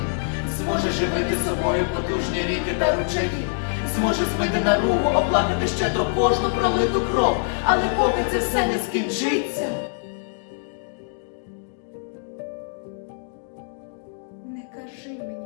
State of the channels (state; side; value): silent; right; digital silence